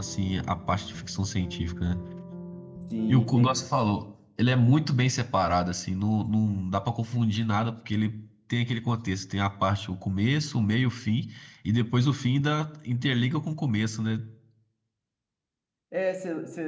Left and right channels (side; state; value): both; identical; correlation 1.00